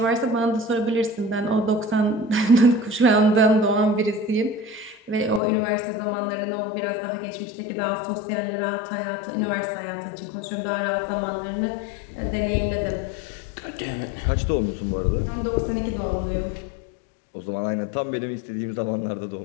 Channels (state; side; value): drops out; right; at 5.4 s